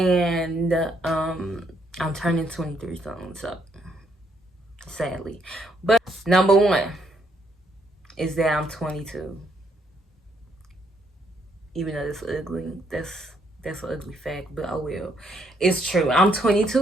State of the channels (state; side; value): normal; both; correlation 0.72